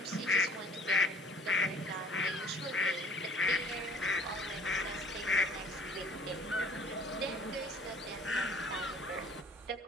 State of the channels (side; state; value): both; normal; correlation 0.53